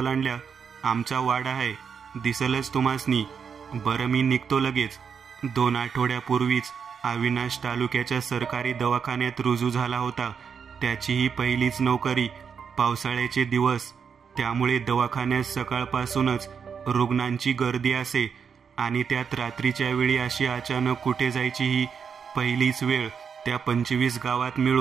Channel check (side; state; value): left; quieter; 6.6 dB